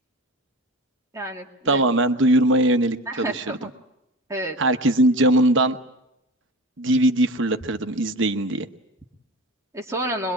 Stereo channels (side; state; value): both; normal; correlation 0.32